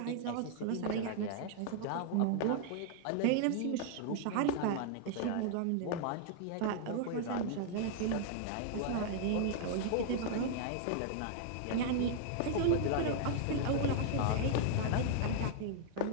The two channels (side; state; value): both; different; correlation 0.00